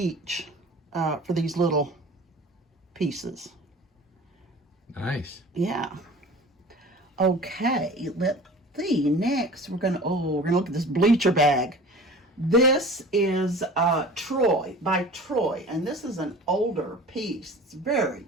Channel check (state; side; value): normal; both; correlation 0.41